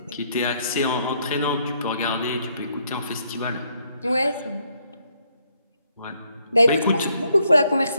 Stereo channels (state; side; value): inverted; both; correlation -0.73